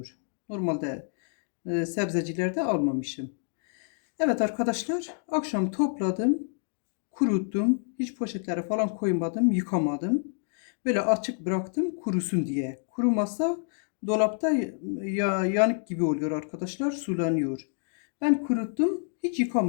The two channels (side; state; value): right; silent; 59 dB below the other